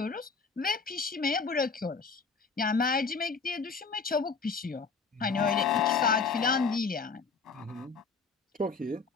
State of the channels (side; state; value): right; quieter; 4.9 dB